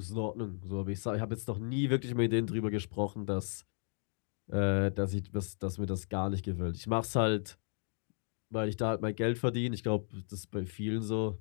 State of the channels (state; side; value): silent; right; 55 dB below the other